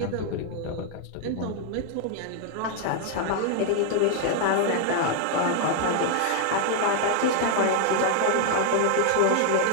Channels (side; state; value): both; different; correlation 0.00